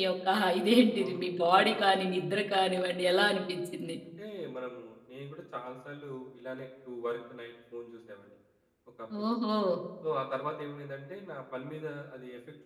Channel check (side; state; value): both; identical; correlation 1.00